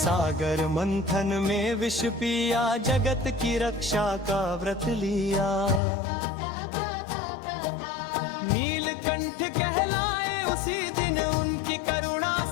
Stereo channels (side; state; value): right; drops out; at 5.8 s